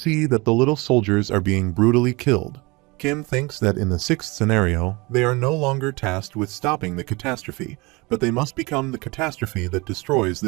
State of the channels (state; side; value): quieter; left; 25.0 dB